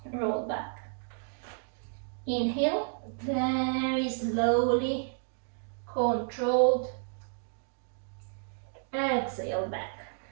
roll back. Inhale, very slowly, controlled. Exhale, back.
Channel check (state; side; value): silent; left; digital silence